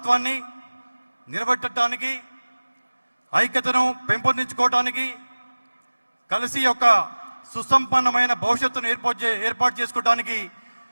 నిలబెట్టడానికి, ఐక్యతను పెంపొందించుకోవటానికి, కలిసి యొక్క సుసంపన్నమైన భవిష్యత్తును ఏర్పాటు చేసుకోవడానికి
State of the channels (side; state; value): both; inverted; correlation -1.00